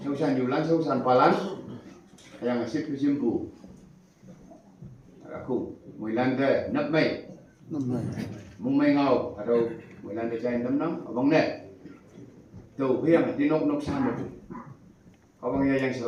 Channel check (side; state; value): both; identical; correlation 1.00